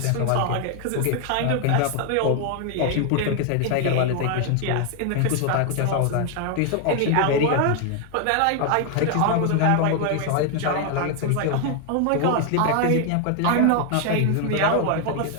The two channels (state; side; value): different; both; correlation 0.00